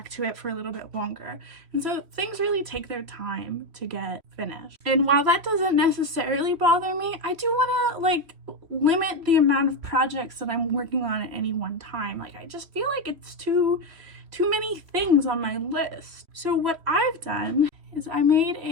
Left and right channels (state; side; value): late; left; 3.1 ms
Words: to it for a little bit longer. And so things really take their time to get finished. And while that doesn't necessarily bother me, I do want to limit the amount of projects that I'm working on at any one time. I just feel like it's too many things on my list. So what I've done is I